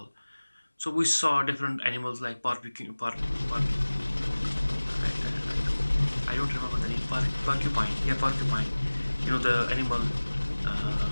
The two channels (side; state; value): both; inverted; correlation -1.00